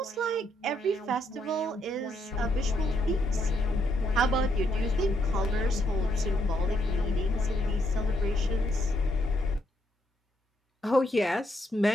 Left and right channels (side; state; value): both; normal; correlation 0.75